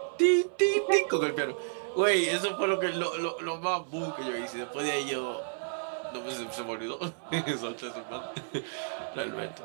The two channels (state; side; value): silent; left; 57 dB below the other